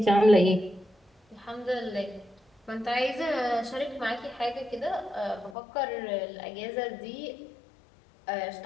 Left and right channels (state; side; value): drops out; right; at 5.6 s